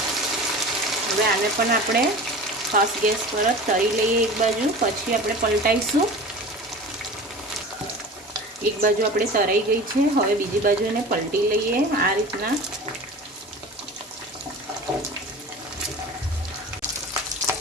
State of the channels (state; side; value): normal; both; correlation 0.36